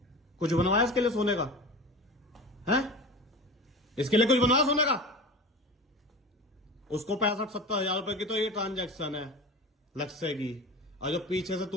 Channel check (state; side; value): normal; both; correlation 0.33